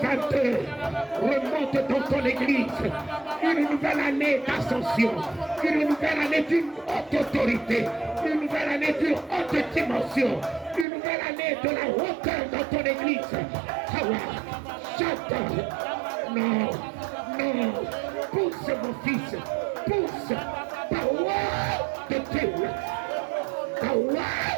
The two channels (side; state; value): left; drops out; at 10.9 s